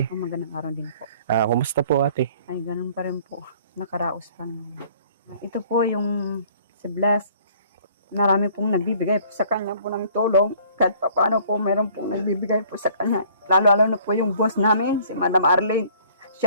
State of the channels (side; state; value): both; inverted; correlation -0.55